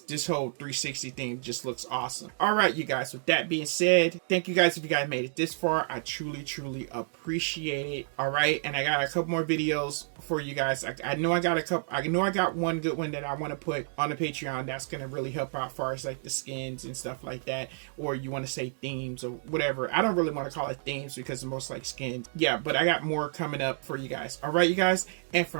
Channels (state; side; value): silent; left; digital silence